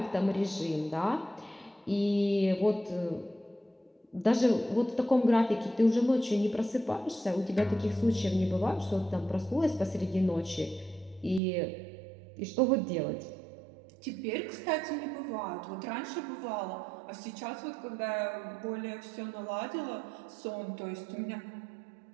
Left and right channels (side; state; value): left; drops out; at 11.4 s